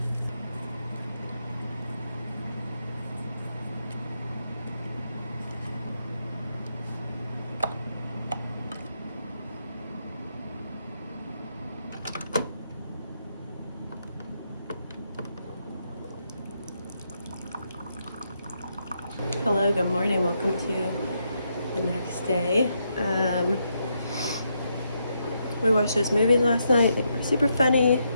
Hello, good morning. Welcome to the next day. We watched those movies last night. They were super funny.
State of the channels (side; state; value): both; inverted; correlation -0.80